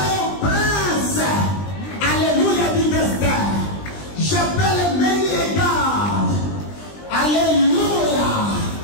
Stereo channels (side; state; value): right; late; 20 ms